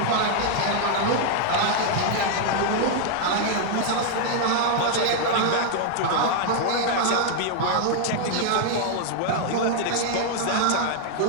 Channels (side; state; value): both; different; correlation 0.00